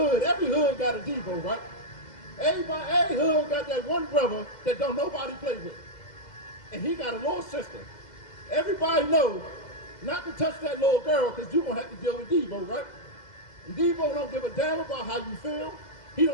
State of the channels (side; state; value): right; late; 2.0 ms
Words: every hood got a Devo, right? Every hood got that one brother that don't nobody play with. And he got a little sister. Everybody knows not to touch that little girl because you're going to have to deal with Devo, right? And Devo don't give a damn about how you feel. He